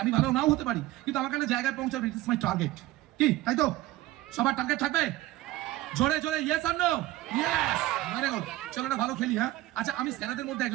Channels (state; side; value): quieter; left; 16.4 dB